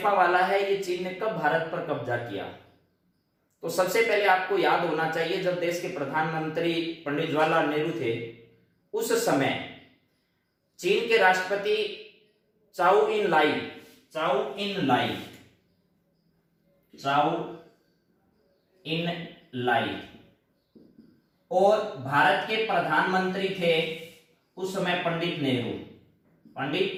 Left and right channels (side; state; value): both; identical; correlation 1.00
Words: वाला है, ये चीन ने कब भारत पर कब्जा किया? तो सबसे पहले आपको याद होना चाहिए जब देश के प्रधानमंत्री पंडित जवाहरलाल नेहरू थे उस समय चीन के राष्ट्रपति चाउ इन लाई चाउ इन लाई, और भारत के प्रधानमंत्री थे उस समय पंडित नेहरू,